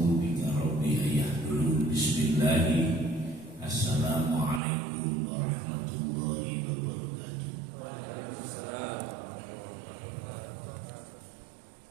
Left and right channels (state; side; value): drops out; left; at 4.6 s